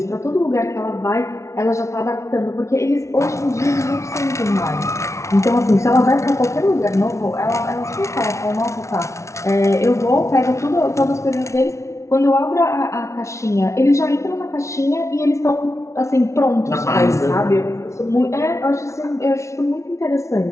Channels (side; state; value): right; late; 0.14 ms